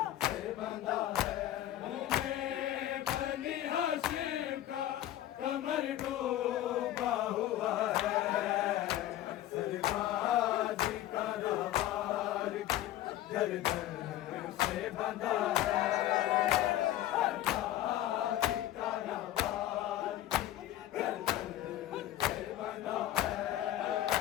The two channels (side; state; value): right; quieter; 13.5 dB